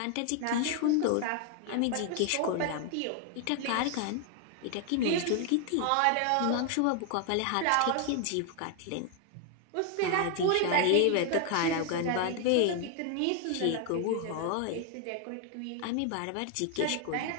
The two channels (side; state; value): both; different; correlation 0.00